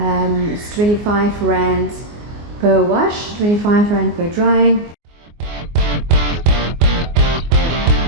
25 Rand per wash, 25 Rand per drying.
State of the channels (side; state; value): left; late; 24 ms